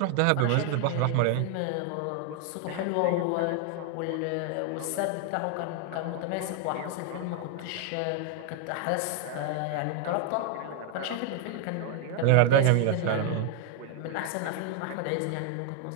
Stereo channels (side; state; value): both; different; correlation 0.00